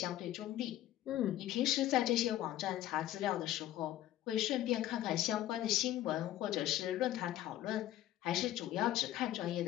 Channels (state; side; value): quieter; right; 13.4 dB